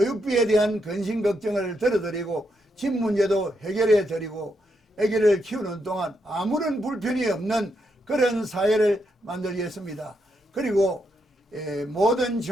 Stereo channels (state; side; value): normal; both; correlation 0.80